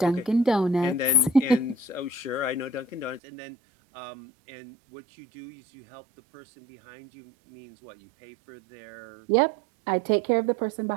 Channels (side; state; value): left; drops out; at 3.2 s